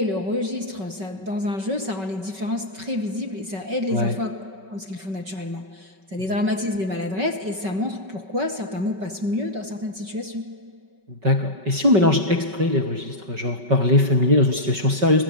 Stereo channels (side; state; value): left; late; 5.3 ms